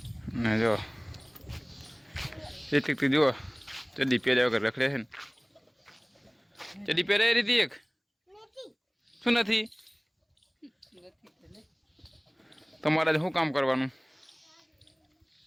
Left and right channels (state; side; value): identical; both; correlation 1.00